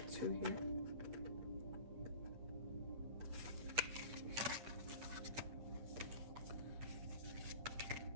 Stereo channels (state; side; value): late; left; 8.9 ms